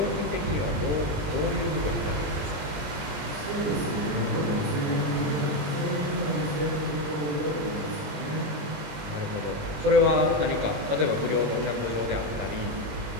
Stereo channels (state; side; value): late; left; 20 ms